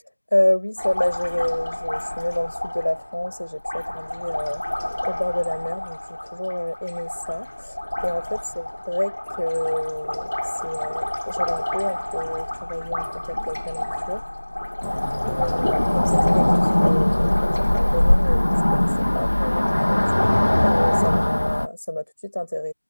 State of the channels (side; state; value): both; inverted; correlation -1.00